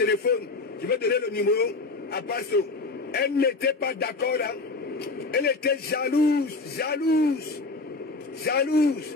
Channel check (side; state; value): right; quieter; 3.6 dB